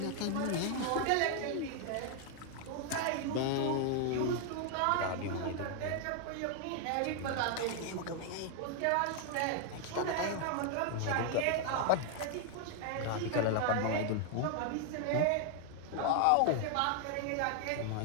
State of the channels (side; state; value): both; different; correlation 0.00